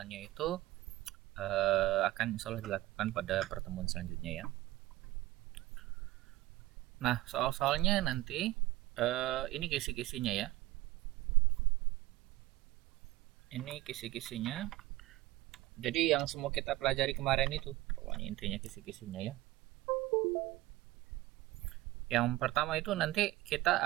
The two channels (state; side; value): quieter; left; 17.5 dB